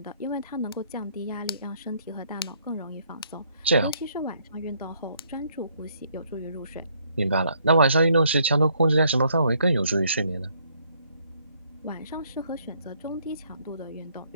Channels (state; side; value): inverted; both; correlation -0.68